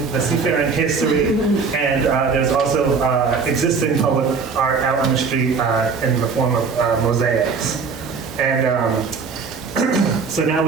the seafaring history, and there's also existing public art out on the street in the form of mosaics. And so now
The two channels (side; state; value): left; quieter; 5.1 dB